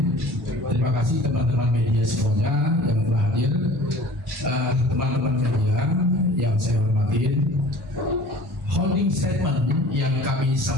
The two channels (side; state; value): both; normal; correlation 0.45